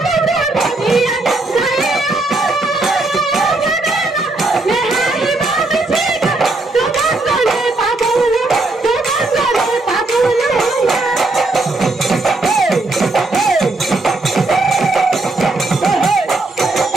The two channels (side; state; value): left; quieter; 3.1 dB